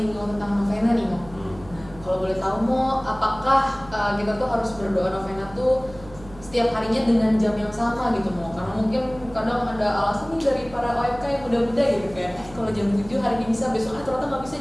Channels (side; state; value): right; noise; hum, 19 dB below the sound